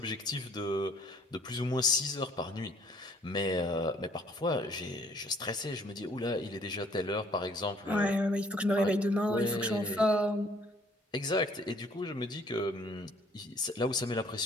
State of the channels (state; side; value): normal; both; correlation 0.59